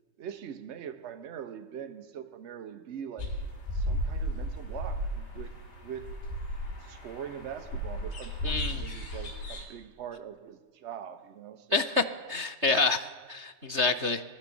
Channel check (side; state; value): left; late; 3.3 ms